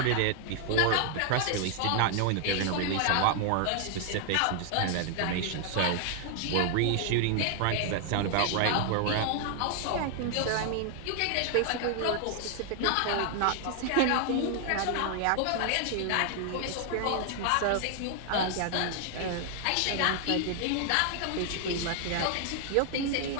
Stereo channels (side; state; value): both; different; correlation 0.00